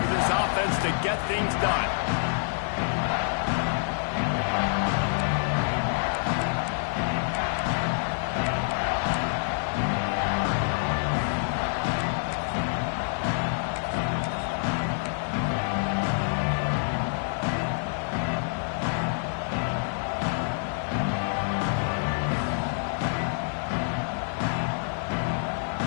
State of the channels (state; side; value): silent; right; 60 dB below the other